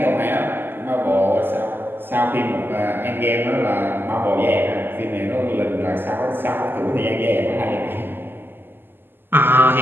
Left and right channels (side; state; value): left; late; 0.097 ms